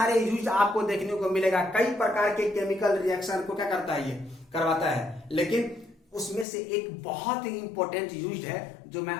यूज आपको देखने को मिलेगा। कई प्रकार के केमिकल रिएक्शन को क्या करता है? ये करवाता है। लेकिन उसमें से एक बहुत ही इंपॉर्टेंट यूज है जो मैं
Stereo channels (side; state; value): right; drops out; at 6.5 s